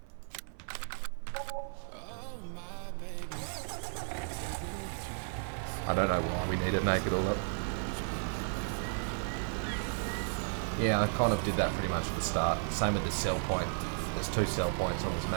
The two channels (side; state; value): left; silent; 55 dB below the other